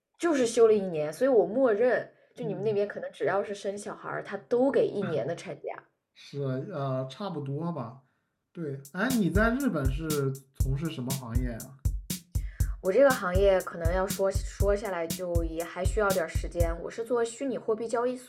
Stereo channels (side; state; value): both; identical; correlation 1.00